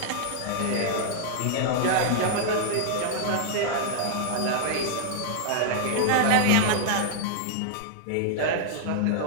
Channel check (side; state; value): both; different; correlation -0.01